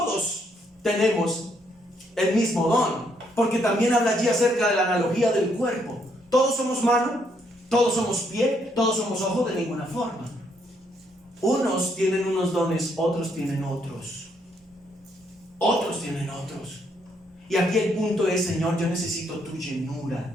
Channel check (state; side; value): normal; both; correlation 0.73